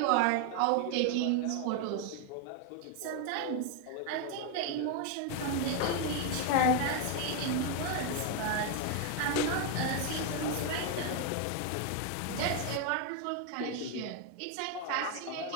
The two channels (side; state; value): both; different; correlation 0.01